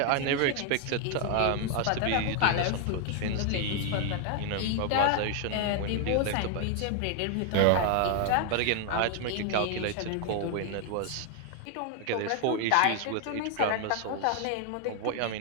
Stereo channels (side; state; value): both; different; correlation 0.00